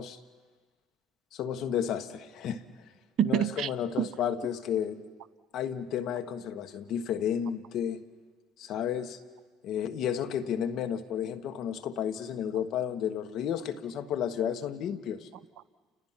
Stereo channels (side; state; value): right; quieter; 4.4 dB